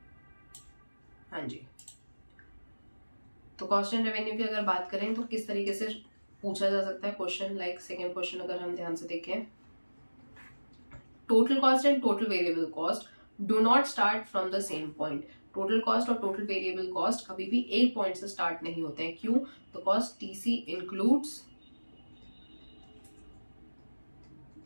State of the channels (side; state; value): both; inverted; correlation -1.00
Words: हाँ जी. तो कॉस्ट एंड रेवेन्यू की अगर बात करें तो किस तरीके से पूछा जा सकता है क्वेश्चन, लाइक सेकेंड क्वेश्चन अगर हम ध्यान से देखें, total cost and total variable cost do not start from the same point. Total cost और टोटल वेरिएबल कॉस्ट कभी भी एक पॉइंट से स्टार्ट नहीं होते हैं. क्यों, तो cost TC includes